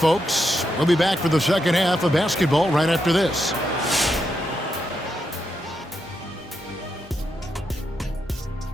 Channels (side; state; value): both; normal; correlation 0.83